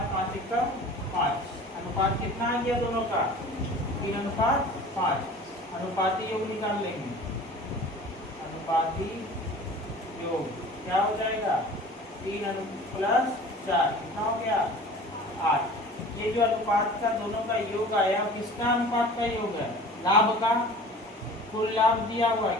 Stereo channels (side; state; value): both; normal; correlation 0.42